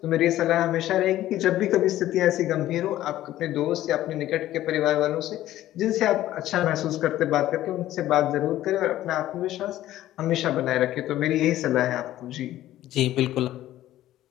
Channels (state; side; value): quieter; right; 14.0 dB